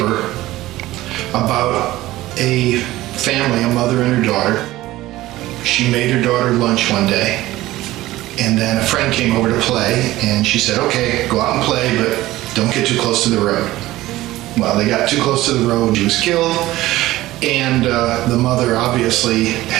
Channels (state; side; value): quieter; left; 16.8 dB